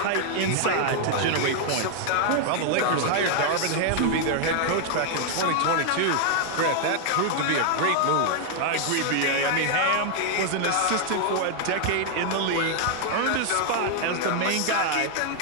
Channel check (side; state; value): both; different; correlation 0.00